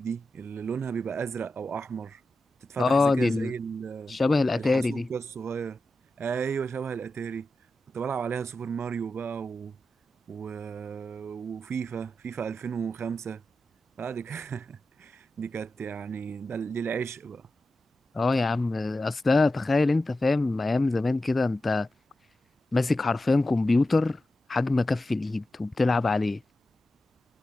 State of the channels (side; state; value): both; normal; correlation 0.92